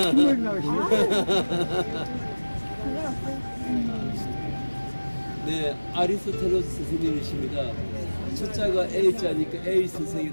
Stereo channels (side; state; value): both; inverted; correlation -1.00